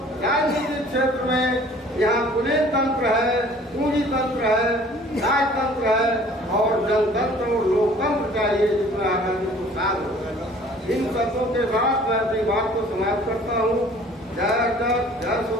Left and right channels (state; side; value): normal; both; correlation 0.52